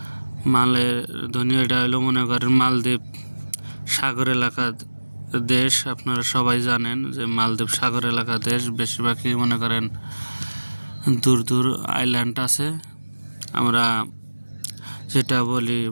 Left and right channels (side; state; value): both; inverted; correlation -1.00